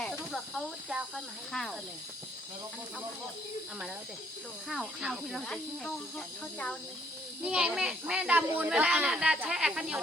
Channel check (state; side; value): normal; both; correlation 0.66